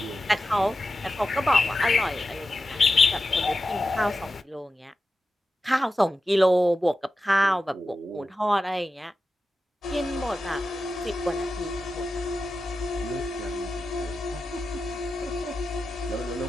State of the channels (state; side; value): normal; both; correlation 0.91